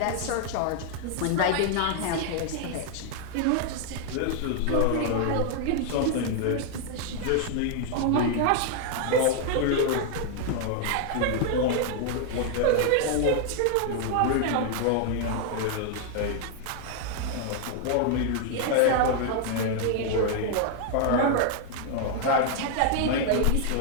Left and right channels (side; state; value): both; different; correlation 0.00